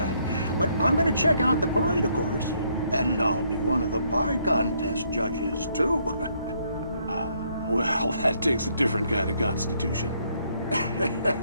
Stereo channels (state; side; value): inverted; both; correlation -0.70